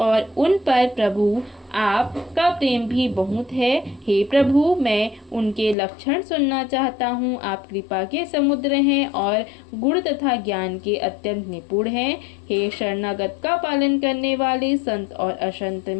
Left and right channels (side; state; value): right; drops out; at 5.8 s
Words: उन पर प्रभु आपका प्रेम भी बहुत है। हे प्रभु, मैं उनके लक्षण सुनना चाहता हूँ। आप कृपा के समुद्र हैं और गुण तथा ज्ञान के अत्यंत निपुण हैं। हे शरणागत का पालन करने वाले, संत और असंत